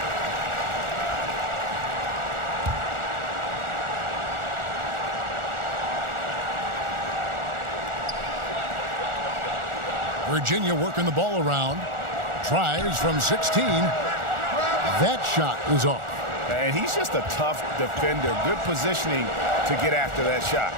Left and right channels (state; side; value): late; left; 1.4 ms